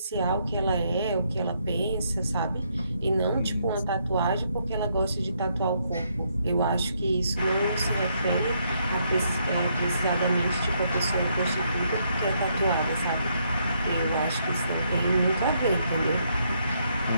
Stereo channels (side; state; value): both; inverted; correlation -0.74